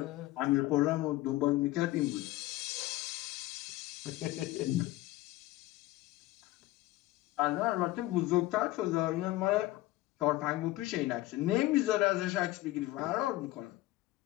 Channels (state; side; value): quieter; right; 17.3 dB